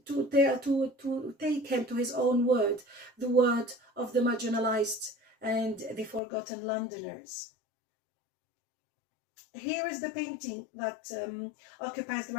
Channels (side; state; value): right; drops out; at 6.2 s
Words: take him to his own word, the word of the marginalized and the forgotten Londoners. Here is the painting that occupies the